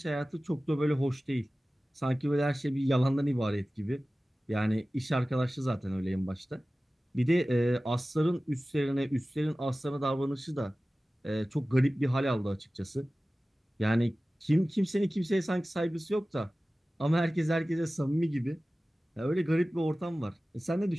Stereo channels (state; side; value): normal; both; correlation 0.96